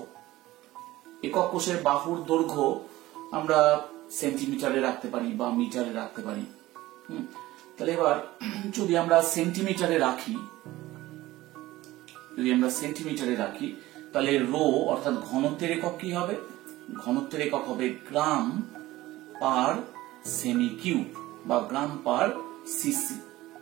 একক কোষের বাহুর দৈর্ঘ্য আমরা সেন্টিমিটারে রাখতে পারি বা মিটারে রাখতে পারি। তাহলে এবার যদি আমরা সেন্টিমিটারে রাখি তাহলে রো অর্থাৎ ঘনত্বের একক কি হবে? ঘনত্বের একক হবে গ্রাম পার সেমি কিউব বা গ্রাম পার সিসি।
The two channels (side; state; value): left; quieter; 17.2 dB